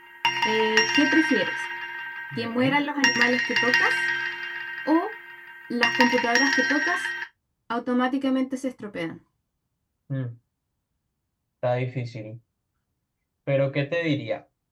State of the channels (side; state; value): both; identical; correlation 1.00